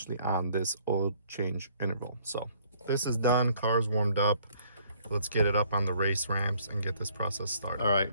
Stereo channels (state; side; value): inverted; both; correlation -0.61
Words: on this oil change interval. So this is done, car's warmed up. Let's get it up on the race ramps and get this process started. All right,